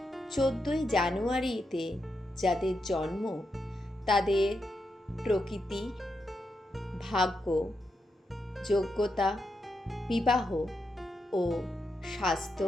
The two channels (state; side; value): normal; both; correlation 0.85